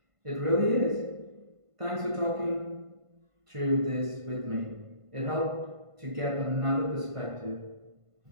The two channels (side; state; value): left; late; 1.5 ms